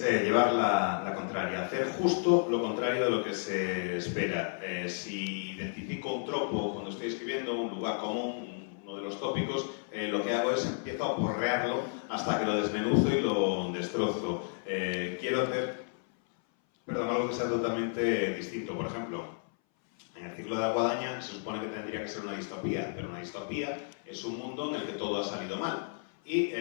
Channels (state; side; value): silent; right; 56 dB below the other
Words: llevar la contraria, hacer justo lo contrario de lo que se espera. Si identifico un tropo cuando estoy escribiendo, un lugar común, uno de los tópicos, lo que hago es empiezo a porrearlo hasta que lo desmenuzo y lo destrozo. Quiero hacer algo que sea totalmente distinto. Por ejemplo, en el ciclo de la guadaña se supone que tendría que ser una distopía, pero una distopía es un mundo en el que todo ha salido mal. Y